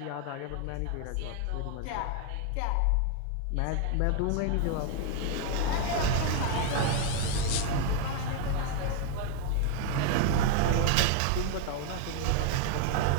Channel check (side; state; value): both; different; correlation 0.01